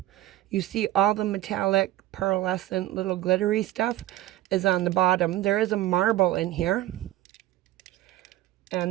You see all the metallic, pearlescent, little glittery stuff is on the bottom. There is a marble in here, and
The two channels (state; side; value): quieter; left; 15.0 dB